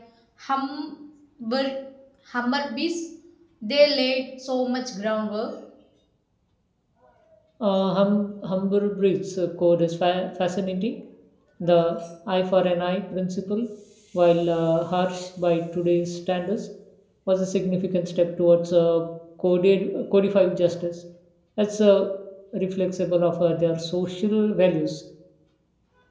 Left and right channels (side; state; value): both; identical; correlation 1.00